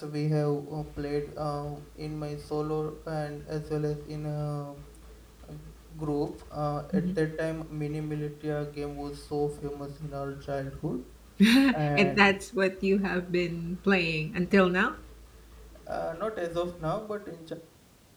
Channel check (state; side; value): identical; both; correlation 1.00